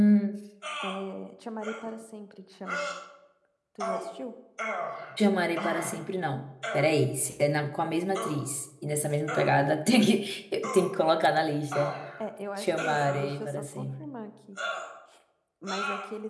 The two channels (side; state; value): both; identical; correlation 1.00